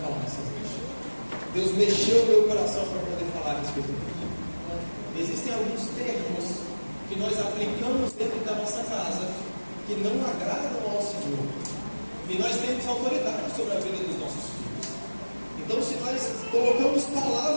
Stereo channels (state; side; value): inverted; both; correlation -1.00